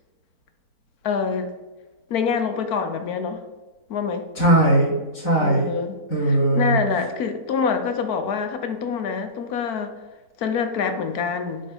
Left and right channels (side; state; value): right; late; 4.0 ms